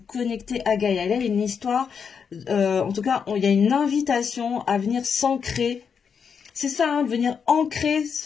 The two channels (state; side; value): quieter; right; 6.5 dB